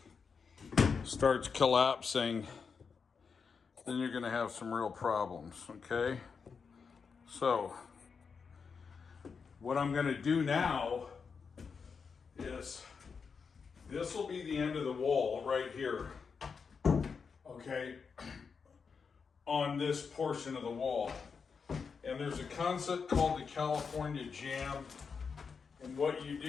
starts collapsing, then you're going to have some real problems. Okay, so what I'm going to do now is, this will be the end of the wall right here. Okay, on this portion of the wall. And there's a concept called the California jamb. And what you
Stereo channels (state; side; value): quieter; right; 5.6 dB